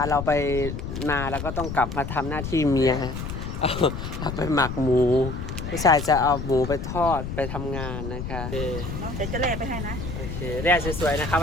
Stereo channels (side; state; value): left; noise; rumble, 6 dB below the sound